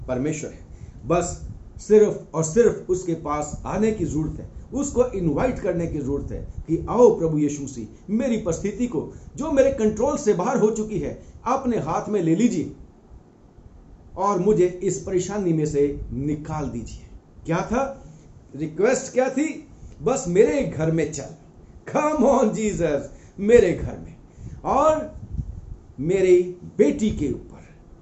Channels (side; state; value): both; identical; correlation 1.00